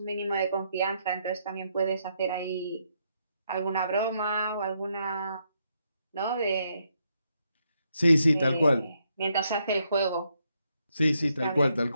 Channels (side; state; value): both; inverted; correlation -0.77